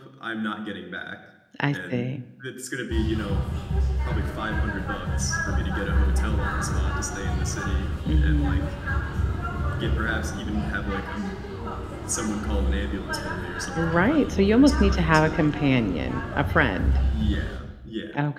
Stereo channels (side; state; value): both; identical; correlation 1.00